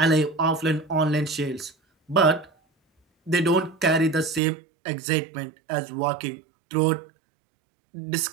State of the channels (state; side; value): drops out; left; at 4.4 s